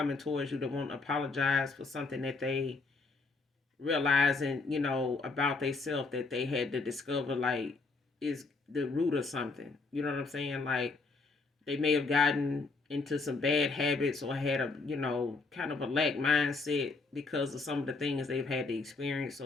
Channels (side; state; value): right; quieter; 3.9 dB